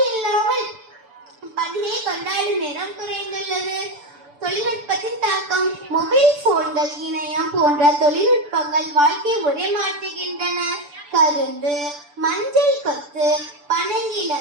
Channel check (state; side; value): late; left; 6.9 ms